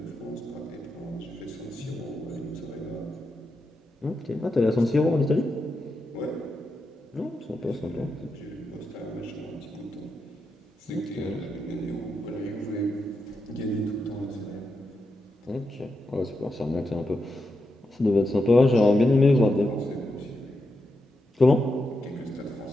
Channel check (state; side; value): normal; both; correlation 0.86